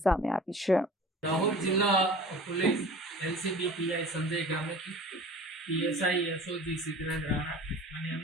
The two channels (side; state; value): both; normal; correlation 0.42